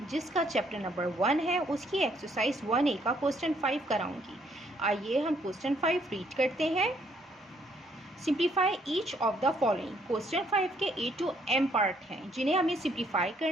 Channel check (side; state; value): both; normal; correlation 0.68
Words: जिसका चैप्टर नंबर 1 है उसकी एक्सरसाइज 1A का क्वेश्चन 5 कराऊंगी। आइए हम क्वेश्चन 5 रीड करते हैं। Simplify each of the following. Question 5 के A to M पार्ट हैं जिन्हें हमें सिंप्लीफाई